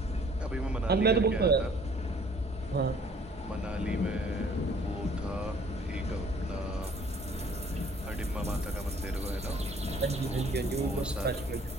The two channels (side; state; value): both; normal; correlation 0.56